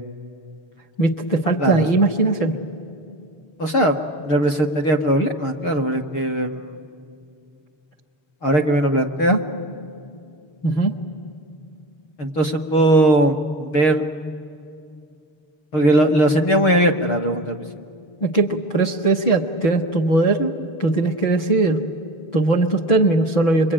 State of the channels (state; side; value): late; right; 6.5 ms